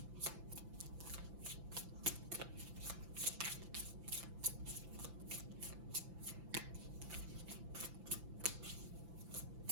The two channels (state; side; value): late; left; 5.9 ms